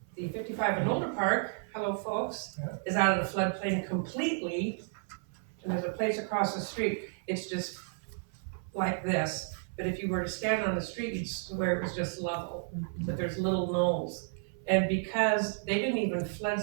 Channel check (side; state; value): left; silent; 56 dB below the other